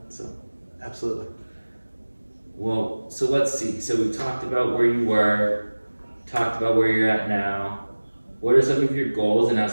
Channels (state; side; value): inverted; both; correlation -1.00